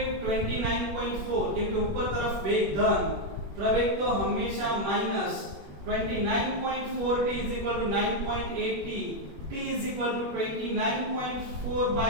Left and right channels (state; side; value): late; left; 21 ms